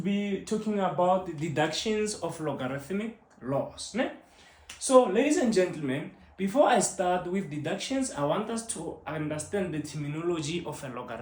talking about the deductions of logarithmic laws. Ne? So, ladies and gentlemen, before I start with deductions, I want us to understand the terminology of a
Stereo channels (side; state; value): both; identical; correlation 1.00